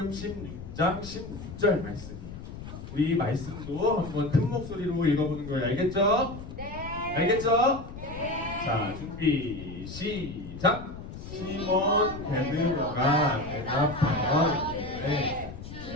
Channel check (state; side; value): noise; left; rumble, 11 dB below the sound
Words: 16장 16절 말씀이에요. 우리 말씀도 한번 큰 목소리로 읽어보는 거예요. 알겠죠? 네. 알겠죠? 네. 자, 준비 시작. 시몬 베드로가 대답하여 이르되